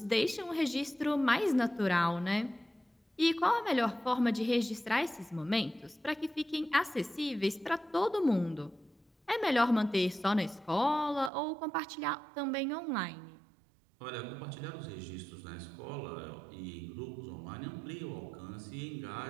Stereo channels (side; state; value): left; drops out; at 11.3 s